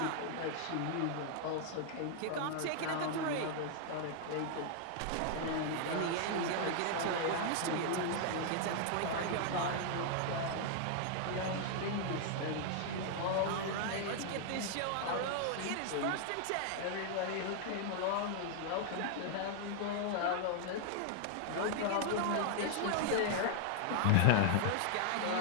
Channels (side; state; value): both; different; correlation 0.00